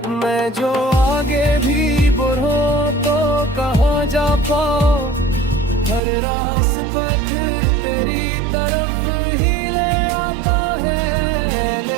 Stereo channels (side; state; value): left; drops out; at 6.0 s